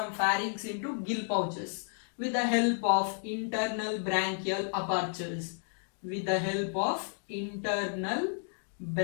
into gill pouches with the help of internal branchial apertures. With the help of internal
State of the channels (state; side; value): silent; right; 56 dB below the other